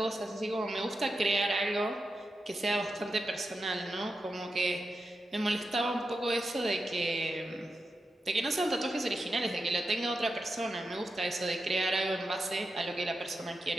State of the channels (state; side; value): normal; both; correlation 0.89